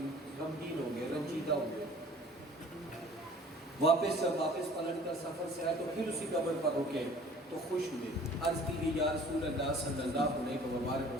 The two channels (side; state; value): both; normal; correlation 0.50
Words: ہو گئے، رنجیدہ ہو گئے۔ واپس پلٹ کر سفر سے آئے تو پھر اسی قبر پر رکے تو خوش ہوئے، عرض کی گئی یا رسول اللہ صلی اللہ علیہ